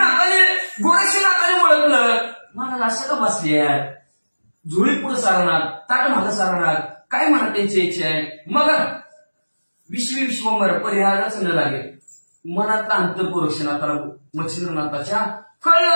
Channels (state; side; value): inverted; both; correlation -1.00